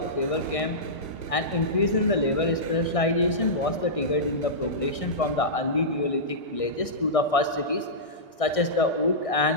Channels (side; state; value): right; late; 1.6 ms